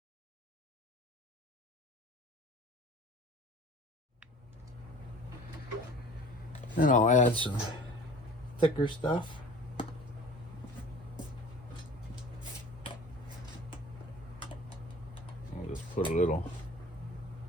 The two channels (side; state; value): both; normal; correlation 0.44